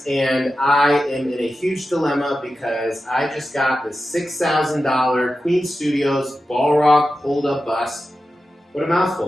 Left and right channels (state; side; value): normal; both; correlation 0.92